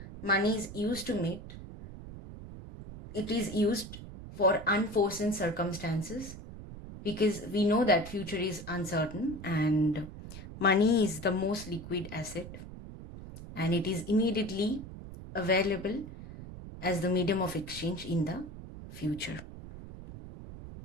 money is used for unforeseen circumstances, because we know that future is uncertain and money is the most liquid asset and it is immediately available as the medium of exchange in the future.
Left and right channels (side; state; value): right; noise; rumble, 12 dB below the sound